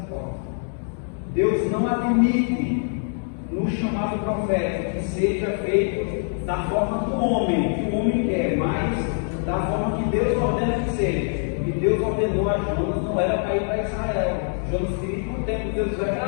forma. Deus não admite no chamado profético que seja feito da forma do homem, que o homem quer, mas da forma que Deus ordena que seja. E Deus ordenou a Jonas, não era para ir para Israel. Jonas queria ir para o tempo, Deus vai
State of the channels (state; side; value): silent; right; 63 dB below the other